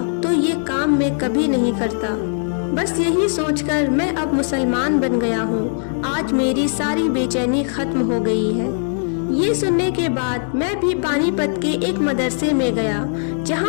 तो ये काम मैं कभी नहीं करता। बस यही सोचकर मैं अब मुसलमान बन गया हूँ। आज मेरी सारी बेचैनी खत्म हो गई है। ये सुनने के बाद मैं भी पानीपत के एक मदरसे में गया,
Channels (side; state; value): right; silent; digital silence